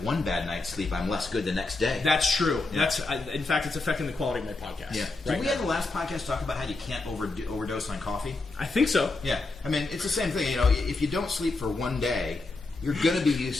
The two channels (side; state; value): right; quieter; 3.4 dB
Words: one bad night's sleep, I'm less good the next day. That's true. Yeah. In fact, it's affecting the quality of my podcast. Yeah. Did we have the last podcast talk about how you can't overdose on coffee? I think so. Yeah. I mean, it's the same thing. If you don't sleep for one day, you're going to be